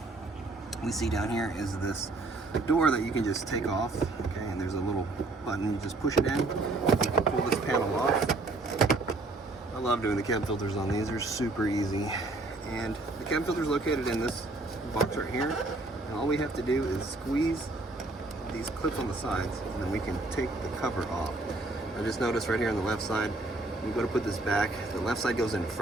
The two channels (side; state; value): left; quieter; 3.1 dB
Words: we see down here is this door that you can just take off. Okay, and there's a little button, you just push it in, you can pull this panel off. I love doing the cabin filters on these, they're super easy. And the cabin filter is located in this box right here, and all we have to do is squeeze these clips on the sides, and then we can take the cover off. I just noticed right here on the left side, we go to put this back, the left side goes in